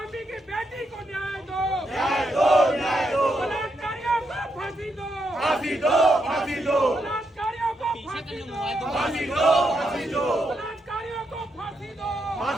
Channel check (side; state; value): both; normal; correlation 0.81